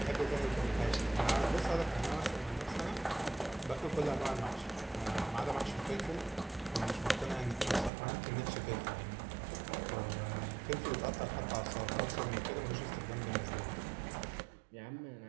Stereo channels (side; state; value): left; drops out; at 7.9 s